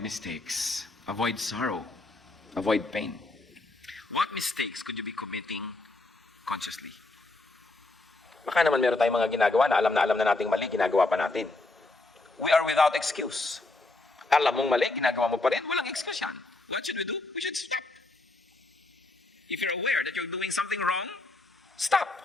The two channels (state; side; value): quieter; right; 3.0 dB